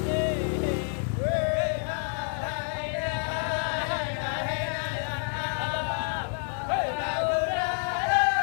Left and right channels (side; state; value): right; silent; 59 dB below the other